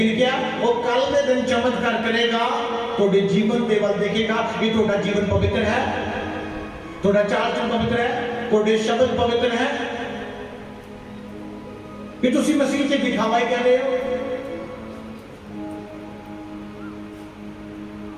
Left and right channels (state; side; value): identical; both; correlation 1.00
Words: क्या वो कल के दिन चमत्कार करेगा, थोड़े जीवन के वल देखेगा कि थोड़ा जीवन पवित्र है, थोड़ा चाल चलन पवित्र है, थोड़े शब्द पवित्र है, कि तुसी मसीह से दिखावा ही कर रहे हो।